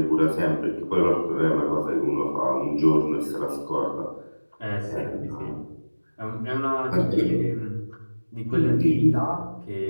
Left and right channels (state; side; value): inverted; both; correlation -1.00